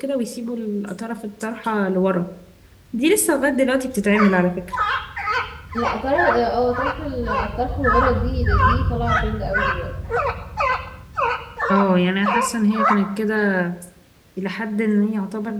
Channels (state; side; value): identical; both; correlation 1.00